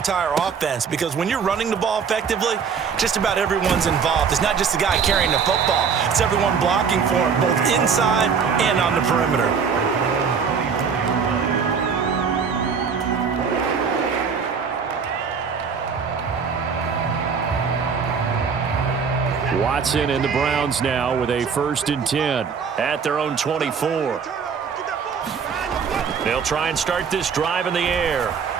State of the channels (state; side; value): quieter; left; 6.2 dB